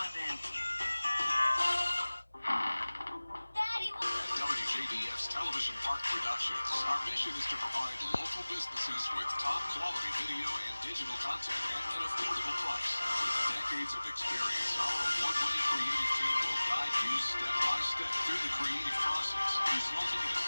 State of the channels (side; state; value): both; inverted; correlation -1.00